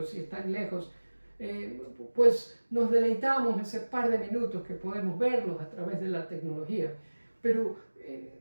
y están lejos, pues nos deleitamos ese par de minutos que podemos verlos a través de la tecnología. Pero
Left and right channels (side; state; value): both; inverted; correlation -1.00